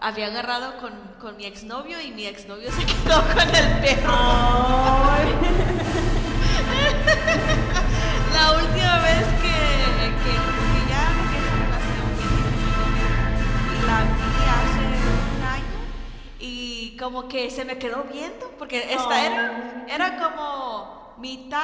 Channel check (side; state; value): both; identical; correlation 1.00